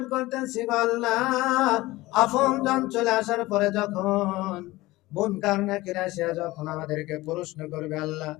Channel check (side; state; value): right; quieter; 19.2 dB